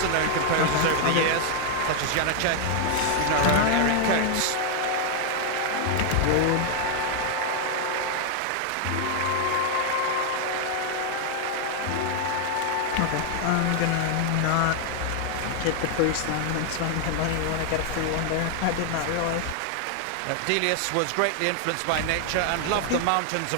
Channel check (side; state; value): both; different; correlation 0.00